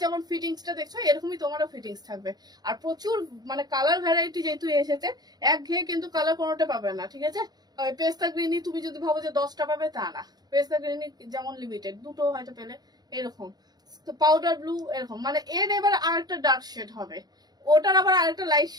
যেমন ফিটিংসটা দেখছো এরকমই তোমারও ফিটিংস থাকবে। আর প্রচুর মানে কালার ভ্যারাইটি যেহেতু এসেছে, একঘেয়ে কিন্তু কালার কোনোটা পাবে না, ঠিক আছে? পেস্তা গ্রিনই তুমি যদি ভাবো যে 10টা পাবে, তা না। পেস্তা গ্রিনই যেমন লিমিটেড, দুটো হয়তো পেলে, এরকম পাউডার ব্লু, এরকম মানে এর এবার আরেকটা ডার্ক শেড হবে, ওটার আবার আরেকটা লাইট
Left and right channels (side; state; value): left; late; 0.19 ms